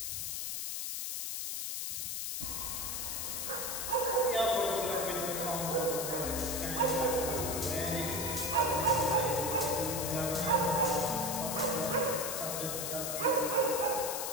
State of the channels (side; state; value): left; noise; hiss, 3 dB below the sound